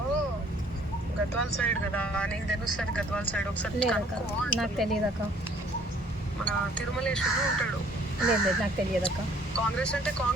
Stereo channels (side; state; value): both; normal; correlation 0.58